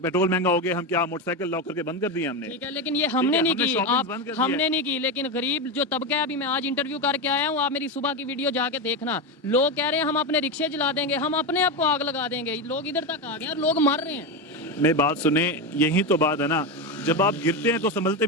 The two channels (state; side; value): normal; both; correlation 0.14